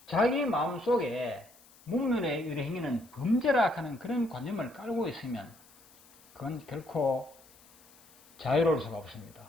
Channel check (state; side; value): noise; left; hiss, 26 dB below the sound